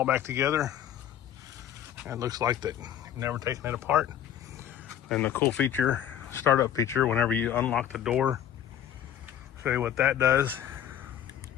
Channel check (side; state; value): right; quieter; 10.3 dB